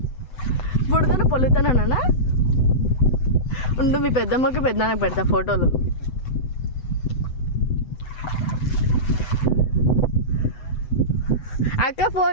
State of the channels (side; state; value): right; late; 7.9 ms